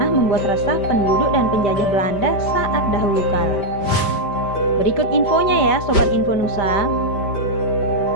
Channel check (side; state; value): right; late; 5.1 ms